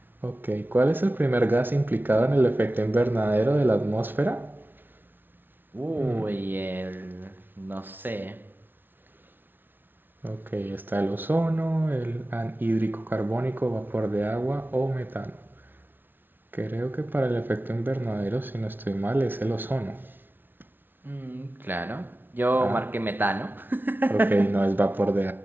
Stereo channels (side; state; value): left; late; 0.096 ms